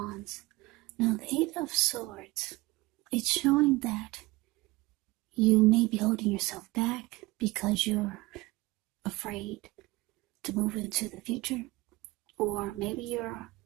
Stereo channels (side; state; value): left; quieter; 21.3 dB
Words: Now the 8 of Swords, it's showing that you may be holding yourself back because you're afraid to move into the future. Or maybe you're